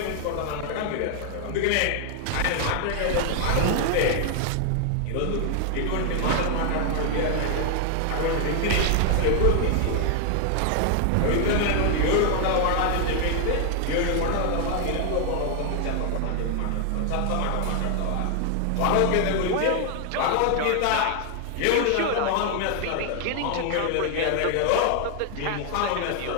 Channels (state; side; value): different; both; correlation 0.00